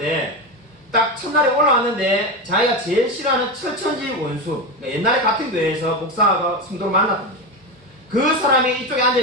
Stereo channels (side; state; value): both; normal; correlation 0.17